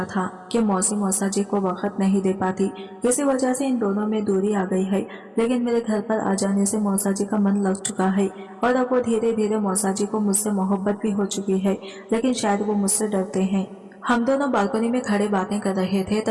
था कि मौसी मौसा जी को वक्त नहीं दे पाती, इसी वजह से इन दोनों में दूरी आ गई है। लेकिन मेरे घर पर आ जाने से मौसा जी का मन लग चुका है और अब वो धीरे धीरे मौसा जी को मुझसे मोहब्बत भी हो चुकी है, लेकिन शायद वो मुझसे डरते हैं। हम दोनों बालकनी में खड़े बातें कर रहे थे,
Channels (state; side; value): identical; both; correlation 1.00